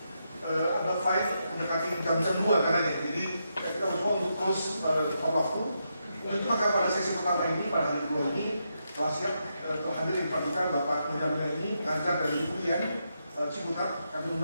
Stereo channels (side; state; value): both; inverted; correlation -0.83